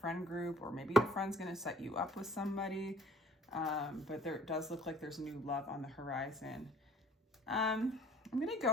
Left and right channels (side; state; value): both; normal; correlation 0.53